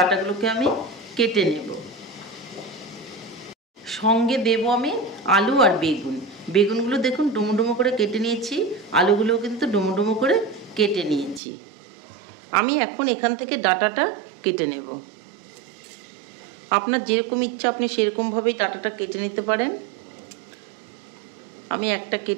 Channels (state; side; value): drops out; left; at 11.4 s